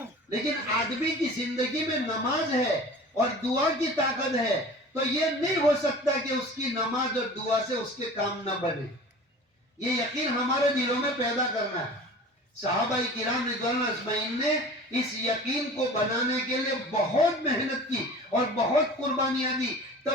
لیکن آدمی کی زندگی میں نماز ہے اور دعا کی طاقت ہے تو یہ نہیں ہو سکتا کہ اس کی نماز اور دعا سے اس کے کام نہ بنے. یہ یقین ہمارے دلوں میں پیدا کرنا ہے. صحابہ کرام رضوان اللہ اجمعین نے اس یقین کو بنانے کے لیے بہت محنت کی اور بہت قربانیاں دی،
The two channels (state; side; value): normal; both; correlation 0.40